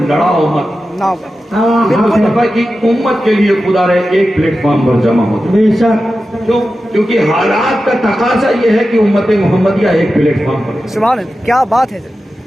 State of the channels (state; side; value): normal; both; correlation 0.92